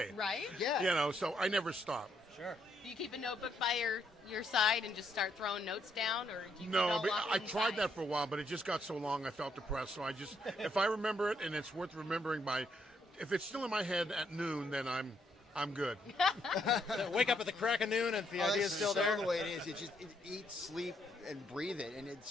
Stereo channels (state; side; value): normal; both; correlation 0.74